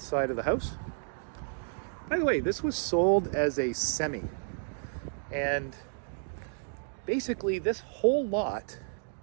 side of the house. By the way, this was sold as a semi, and basically this whole lot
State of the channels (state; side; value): silent; left; digital silence